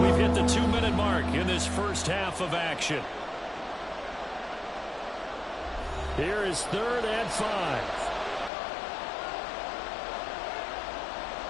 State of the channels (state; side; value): drops out; right; at 8.5 s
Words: we've hit the 2-minute mark in this first half of action. Here is 3rd and 5.